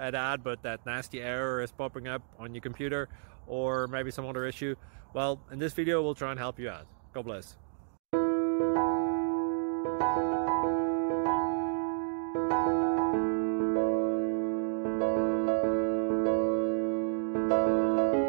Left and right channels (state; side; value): silent; left; digital silence